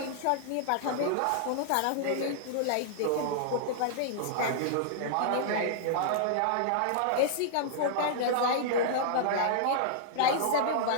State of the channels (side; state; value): both; different; correlation -0.01